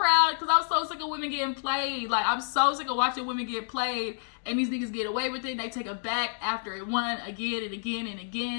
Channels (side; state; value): right; silent; digital silence